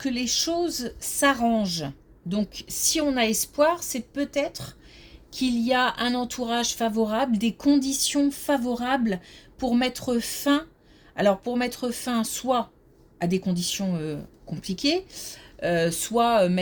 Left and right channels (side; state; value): both; identical; correlation 1.00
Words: les choses s'arrangent. Donc, si on a espoir, c'est peut-être qu'il y a un entourage favorable, des conditions favorables pour mettre fin. Alors, pour mettre fin soit à des conditions compliquées, soit